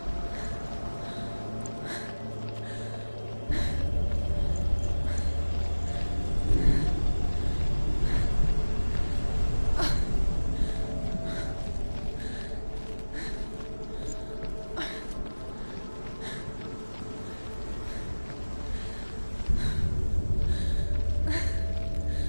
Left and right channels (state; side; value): inverted; both; correlation -1.00